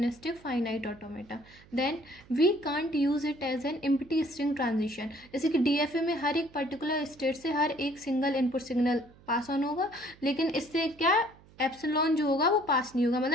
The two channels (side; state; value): right; noise; hum, 25 dB below the sound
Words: finite automata. Then we can't use it as an empty string transition. जैसे कि DFA में हर एक particular state से हर एक single input signal pass on होगा, लेकिन इससे क्या एप्सिलॉन जो होगा वो पास नहीं होगा,